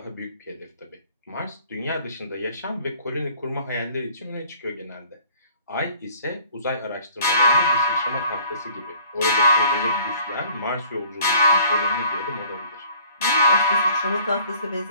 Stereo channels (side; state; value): both; inverted; correlation -0.55